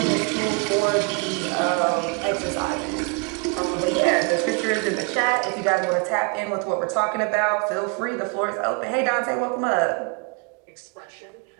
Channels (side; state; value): left; quieter; 34.1 dB